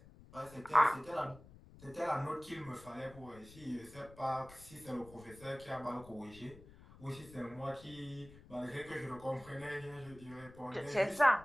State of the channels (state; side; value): noise; left; rumble, 20 dB below the sound